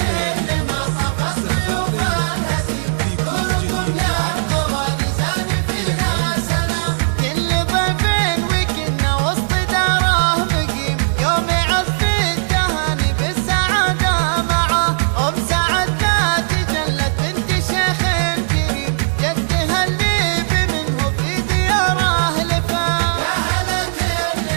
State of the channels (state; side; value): silent; left; 68 dB below the other